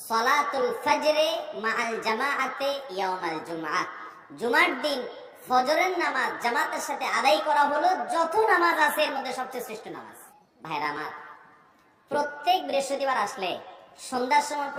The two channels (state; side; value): identical; both; correlation 1.00